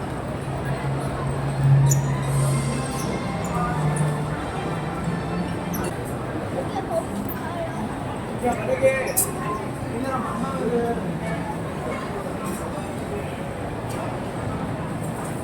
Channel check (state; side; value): identical; both; correlation 1.00